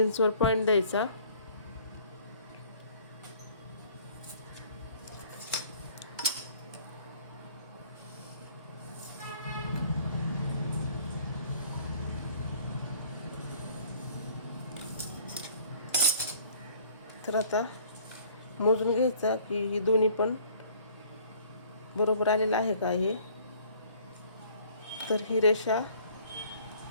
पॉईंट द्यायचा. तर आता मोजून घ्यायचा की ही दोन्ही पण बरोबर आलेलं आहे का हे. तर ही रेषा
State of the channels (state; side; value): inverted; both; correlation -0.55